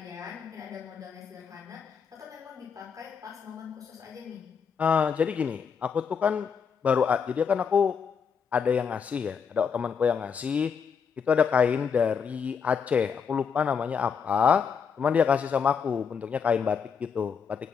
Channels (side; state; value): right; quieter; 6.5 dB